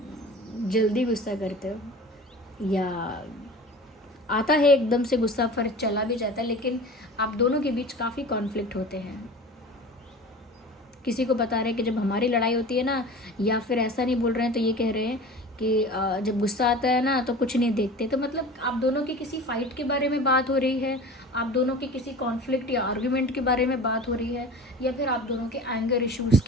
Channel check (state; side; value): normal; both; correlation 0.37